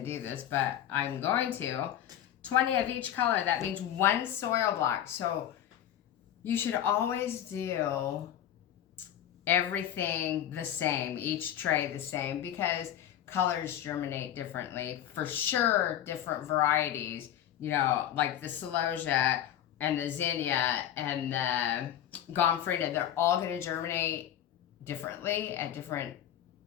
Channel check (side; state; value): right; quieter; 10.9 dB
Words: do this, but I'm going to. 20 of each color. That means one soil block. So you should always do everything the same. Each tray the same. Because colors germinate differently. For sure, different varieties, like the Celosia and the Zinnia and the Gomfrida, they're all going to germinate differently at different